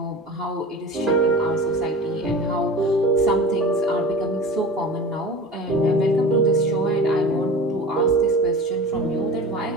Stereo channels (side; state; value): both; normal; correlation 0.35